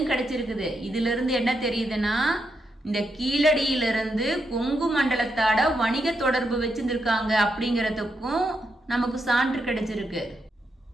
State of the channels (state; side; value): normal; both; correlation 0.82